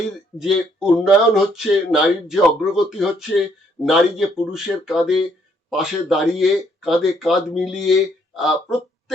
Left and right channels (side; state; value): both; normal; correlation 0.69